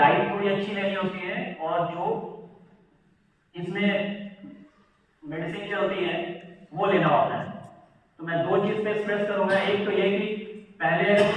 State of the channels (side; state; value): both; identical; correlation 1.00